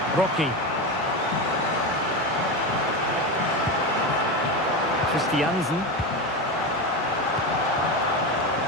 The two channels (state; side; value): normal; both; correlation 0.18